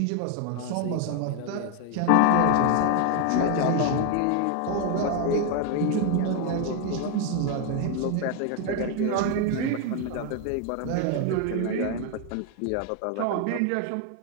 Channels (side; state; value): both; different; correlation 0.01